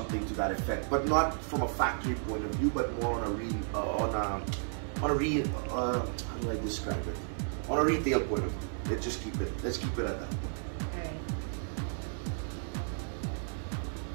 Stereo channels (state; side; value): silent; left; digital silence